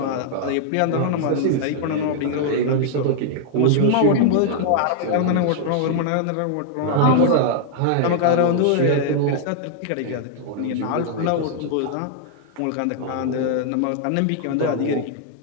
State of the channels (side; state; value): both; different; correlation -0.01